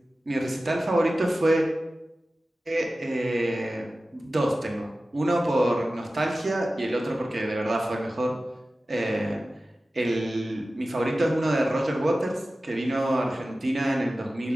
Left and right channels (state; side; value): normal; both; correlation 0.95